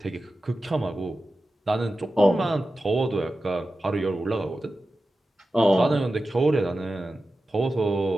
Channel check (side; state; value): both; normal; correlation 0.93